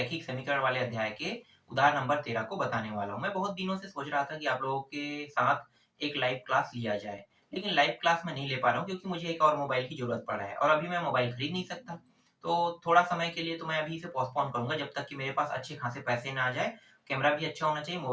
समीकरण वाले अध्याय के उदाहरण नंबर 13 को बताने वाला हूं। मैं बहुत दिनों से सोच रहा था कि आप लोगों के साथ एक लाइव क्लास लिया जाए, लेकिन लाइव क्लास में नहीं ले पा रहा हूं क्योंकि मुझे एक और मोबाइल की जरूरत पड़ा है और अभी मैं मोबाइल खरीद नहीं सकता। तो थोड़ा समय के लिए तो मैं अभी इसे पोस्टपोन करूंगा जब तक कि मेरे पास अच्छे खासे पैसे ना आ जाए। कैमरा भी अच्छा होना चाहिए,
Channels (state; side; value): identical; both; correlation 1.00